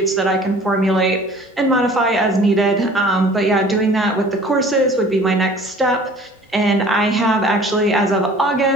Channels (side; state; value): both; normal; correlation 0.49